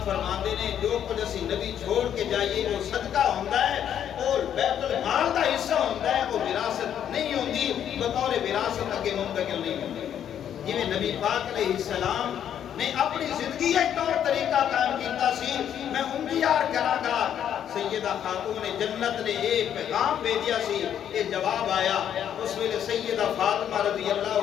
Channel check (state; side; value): quieter; right; 9.6 dB